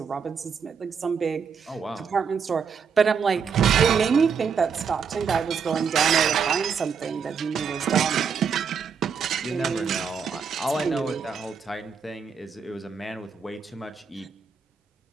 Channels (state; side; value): quieter; left; 6.3 dB